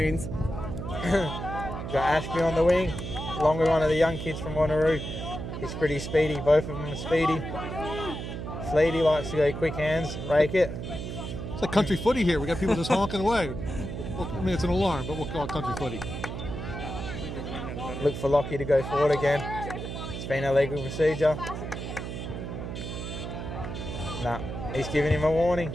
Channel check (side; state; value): right; noise; hum, 6 dB below the sound